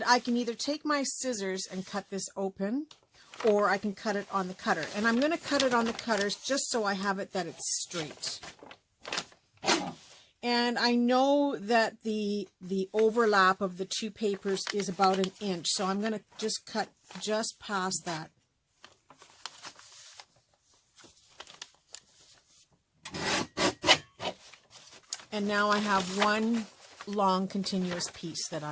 I can either take my scissors and cut this open, or I can cut it on the cutter. And I'm going to cut it on the cutters just so I have it that it's straight. And I know that the overlap of the two papers is about 1 inch, so I'm going to just cut just past that. And now I have one long continuous piece that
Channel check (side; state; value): both; identical; correlation 1.00